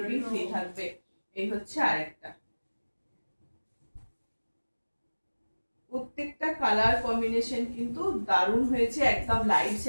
ফ্রি থাকবে। এই হচ্ছে আরেকটা, প্রত্যেকটা কালার কম্বিনেশন কিন্তু দারুণ হয়েছে, একদম লাইট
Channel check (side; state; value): both; inverted; correlation -1.00